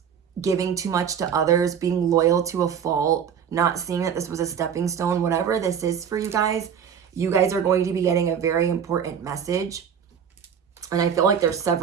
giving too much to others, being loyal to a fault, not seeing that this was a stepping stone, whatever this is for you guys are going to be getting a very important message. And I feel like there's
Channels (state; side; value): quieter; left; 7.8 dB